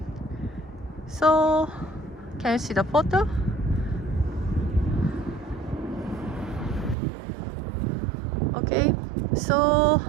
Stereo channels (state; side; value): drops out; left; at 7.0 s